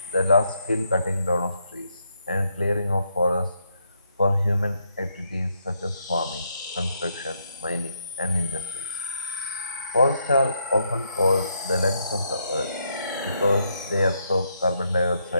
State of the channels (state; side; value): inverted; both; correlation -0.77